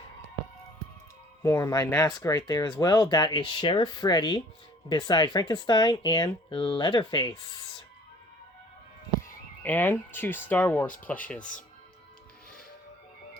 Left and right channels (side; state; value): both; normal; correlation 0.52